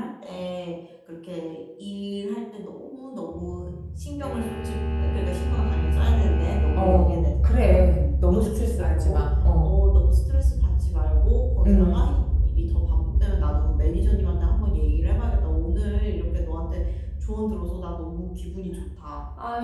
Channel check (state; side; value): identical; both; correlation 1.00